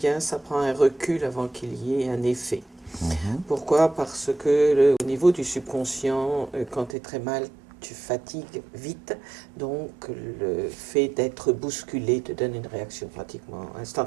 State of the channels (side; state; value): left; drops out; at 7.0 s